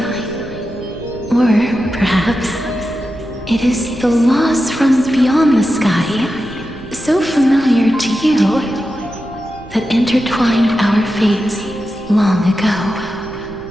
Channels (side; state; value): right; noise; hum, 24 dB below the sound